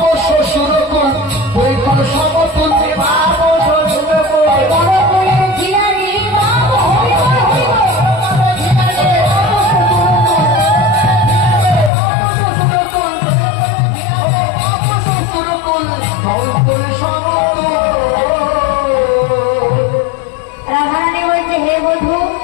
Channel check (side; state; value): right; drops out; at 11.9 s